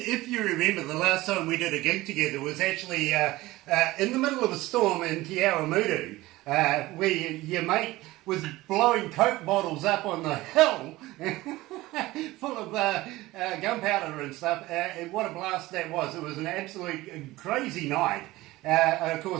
you remember, the last time we did a gig together was actually in the middle of a storm in Te Awamutu, where your mate was blowing Coke bottles up on the hill full of gunpowder and stuff, and what a blast that was. It was an absolute crazy night. Of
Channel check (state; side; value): quieter; left; 18.5 dB